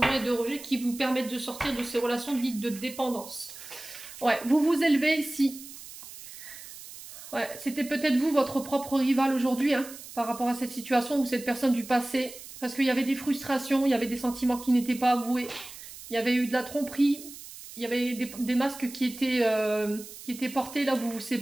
et de rejet qui vous permettent de sortir de ces relations dites de dépendance. Ouais, vous vous élevez ici. Ouais, c'était peut-être vous, votre propre rival aujourd'hui, hein, par rapport à cette situation ou cette personne du passé. Parce qu'il y avait des frustrations, il y avait des sentiments qui n'étaient pas avoués. Il y avait eu de la tromperie. Il y avait des masques qui étaient portés là où vous vous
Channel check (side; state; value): right; noise; hiss, 15 dB below the sound